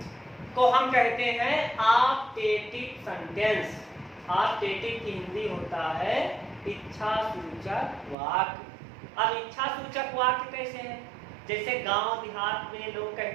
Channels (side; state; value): left; drops out; at 8.2 s